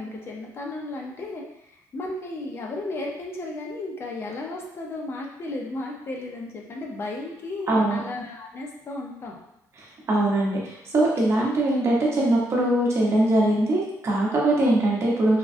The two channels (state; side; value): normal; both; correlation 0.78